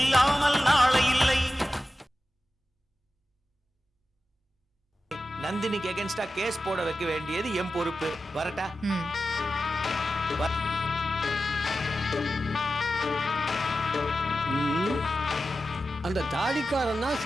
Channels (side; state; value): both; normal; correlation 0.93